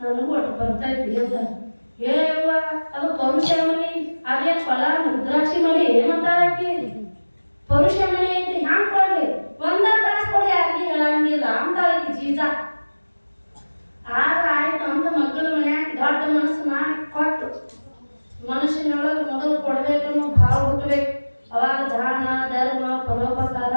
ಒಟ್ಟು ಬರ್ತೈತಿ ಅಂತ. ಏವ ಅದು ಪರುಷಮಣಿ, ಅದೇ ಫಲ ಮುದ್ರಾಕ್ಷಿ ಮಣಿ ಏನಂತಾಳಕಿ? ಪರುಷಮಣಿ ಐತಿ ಹ್ಯಾಂಗ ಕೊಡ್ಲಿ, ಒಂದ ತಾಸು ಕೊಡಿ ಯಾರಿಗೆ ಹೇಳಂಗಿಲ್ಲ ಅಂತಾಳಕಿ ಜೀಜ. ಆದ್ರೆ ಆಯ್ತು ಅಂತ ಮಕ್ಕಳ ಮನ್ಯಾಗ ದೊಡ್ಡ ಮನಸ್ಸು ಮಾಡಿ ಕೊಟ್ಟು, ಮನುಷ್ಯನೊಳಗೆ ಮೊದಲು ಕೊಡ್ಬೇಕನ್ನೋ ಭಾವ ಹುಟ್ಟಬೇಕು. ಅವಾಗ ದಾನ ಧರ್ಮ ಪರೋಪಕಾರ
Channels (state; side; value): inverted; both; correlation -1.00